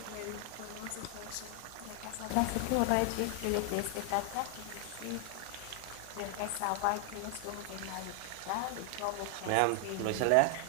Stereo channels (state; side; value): different; both; correlation 0.00